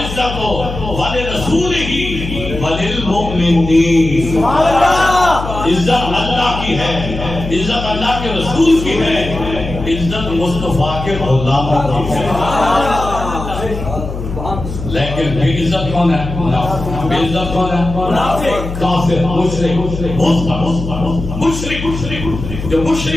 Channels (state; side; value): noise; left; hum, 7 dB below the sound